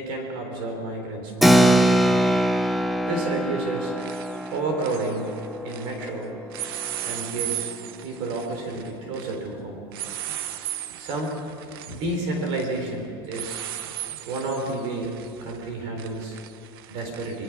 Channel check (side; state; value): both; normal; correlation 0.65